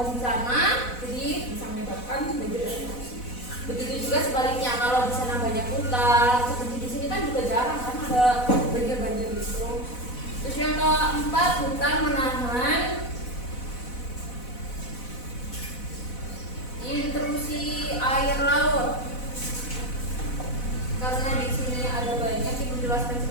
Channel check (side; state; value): right; late; 4.0 ms